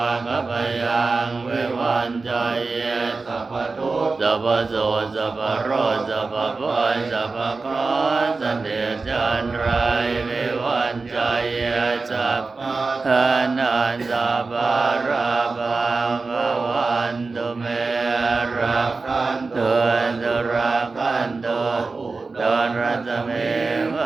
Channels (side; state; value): left; quieter; 4.0 dB